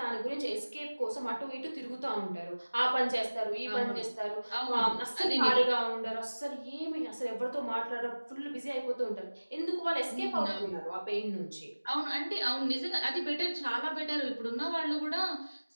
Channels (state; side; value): inverted; both; correlation -1.00